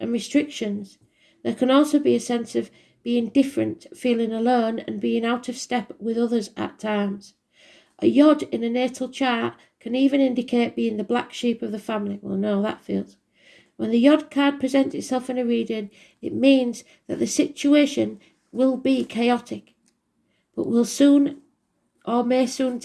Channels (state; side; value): identical; both; correlation 1.00